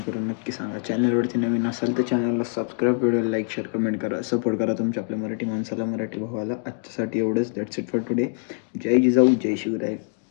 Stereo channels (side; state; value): right; silent; digital silence